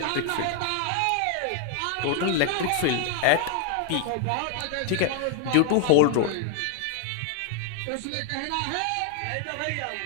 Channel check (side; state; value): both; different; correlation 0.00